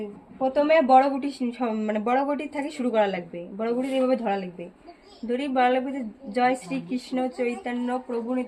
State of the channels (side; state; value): both; identical; correlation 1.00